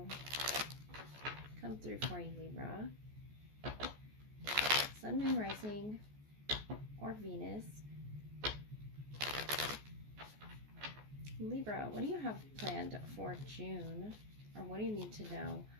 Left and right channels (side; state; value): left; late; 14 ms